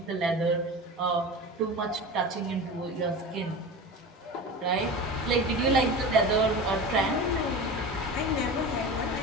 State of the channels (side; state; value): both; normal; correlation 0.30